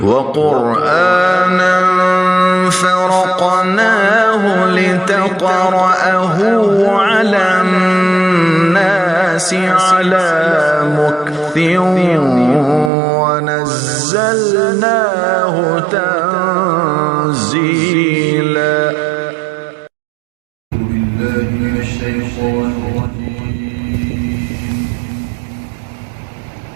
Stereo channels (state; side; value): drops out; left; at 12.9 s